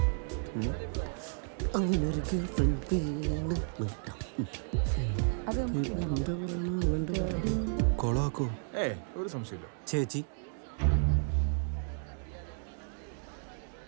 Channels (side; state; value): left; silent; 56 dB below the other